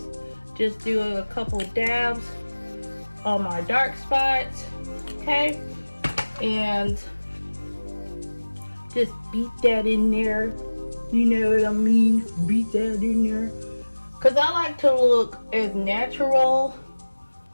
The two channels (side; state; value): both; inverted; correlation -1.00